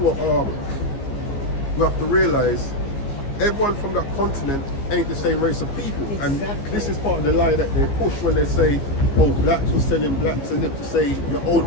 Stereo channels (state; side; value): late; right; 15 ms